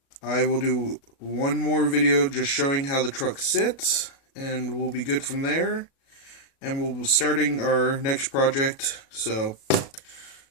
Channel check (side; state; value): right; late; 37 ms